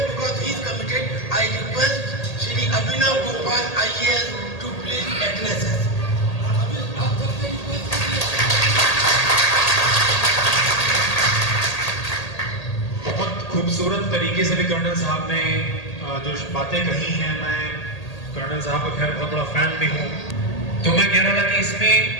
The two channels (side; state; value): right; late; 1.8 ms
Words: because he is committed, I request Shri Abhinav Gopal IAS to please address us. बहुत खूबसूरत तरीके से भी कर्नल साहब ने जो बातें कही हैं, मैं कर्नल साहब का खैर बहुत बड़ा फैन भी हूँ। तो मैं कह रहा था कि इसमें